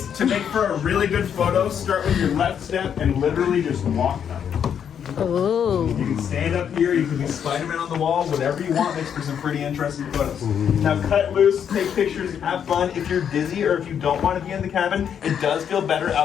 To make for a really good photo, start with your left step and literally just walk up. Oh. You can stand up here, you can be Spider-Man on the wall, whatever you want makes for some pretty interesting photos. Now cut loose, take pictures, have fun. If you're dizzy or if you don't want to be in the cabin, it does feel better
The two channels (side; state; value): right; quieter; 8.3 dB